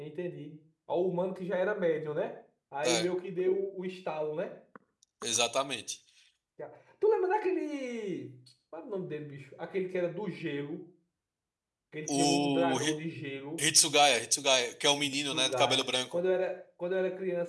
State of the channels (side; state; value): both; identical; correlation 1.00